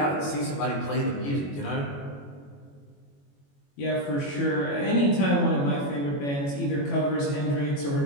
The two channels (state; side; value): late; right; 21 ms